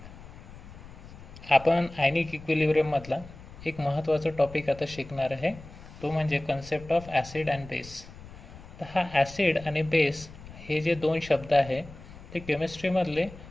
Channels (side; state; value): left; noise; rumble, 17 dB below the sound